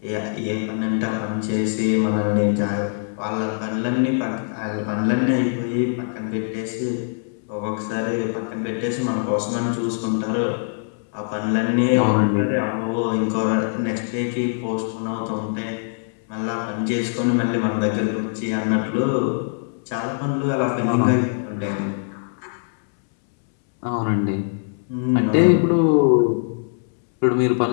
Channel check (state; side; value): silent; right; digital silence